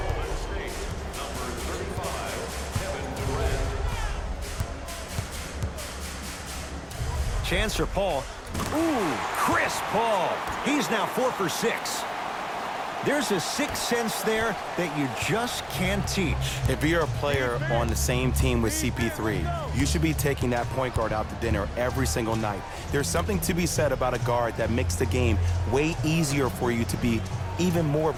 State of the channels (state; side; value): identical; both; correlation 1.00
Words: Chance for Paul. Ooh, Chris Paul. He's now 4 for 6. There's a sixth sense there that you just can't teach. If you're a player on the same team with CP3, you should be taking that point guard out to dinner every single night. There's something to be said about a guard that makes the game way easier for you to be even more of